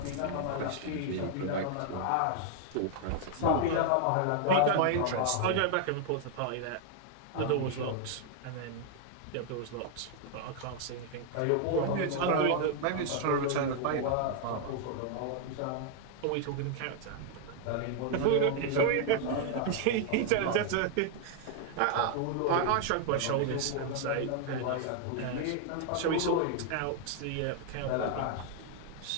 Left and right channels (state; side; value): different; both; correlation 0.00